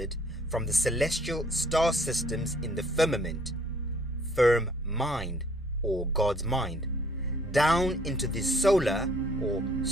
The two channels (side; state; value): both; normal; correlation 0.60